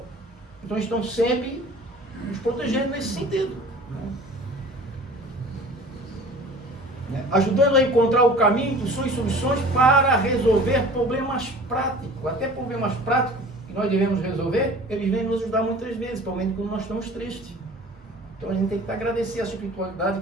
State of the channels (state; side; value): normal; both; correlation 0.44